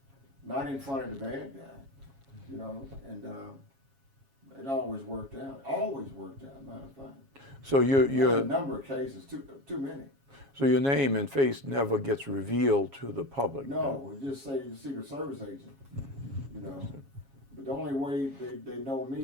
not in front of the bad guy. You know, and it always worked out. Always worked out. Matter of fact. So you're a number of cases, too many. So your name and face never gets revealed to the public. No, we just say the Secret Service agent. You know, but the only way they know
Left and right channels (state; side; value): late; left; 7.3 ms